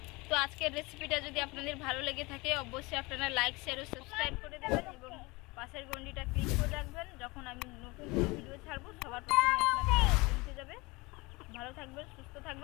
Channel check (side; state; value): right; quieter; 24.4 dB